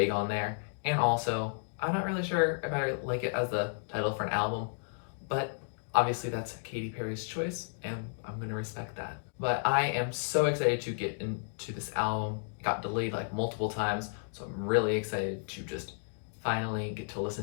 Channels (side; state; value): right; silent; digital silence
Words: on there. And also, I'm not really sure if I like it as the title for an album, but obviously that's Katy Perry's choice, and I'm gonna respect that. But I am so excited to get into this album. It got delayed like multiple times, so I'm really excited to just finally get to